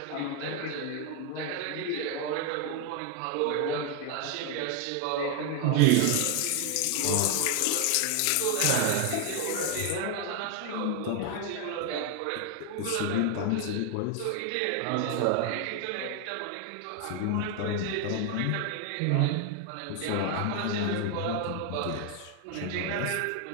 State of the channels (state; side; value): different; both; correlation 0.01